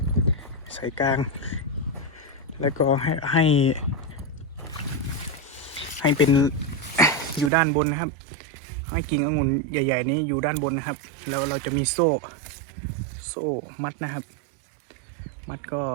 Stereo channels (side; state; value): left; drops out; at 7.5 s